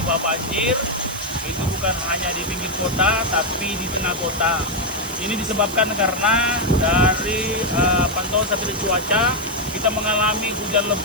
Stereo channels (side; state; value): right; noise; hiss, 12 dB below the sound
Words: banjir. Itu bukan hanya di pinggir kota, tapi di tengah kota. Ini disebabkan karena dari pantauan satelit cuaca, kita mengalami hujan